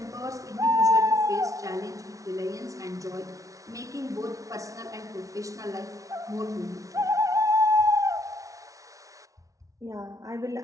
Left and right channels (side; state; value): left; late; 0.17 ms